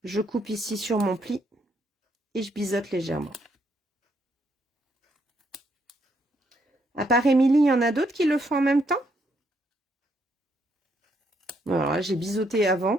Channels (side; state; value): both; normal; correlation 0.74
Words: Je coupe ici sur mon pli. Et je biseaute légèrement. À part Émilie, il y en a d'autres qui le font en même temps? Alors là, j'ai biseauté